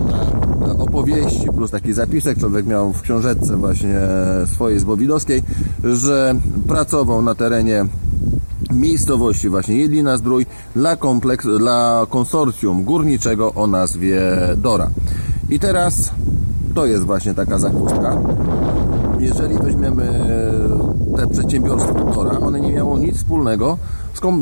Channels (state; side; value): inverted; both; correlation -1.00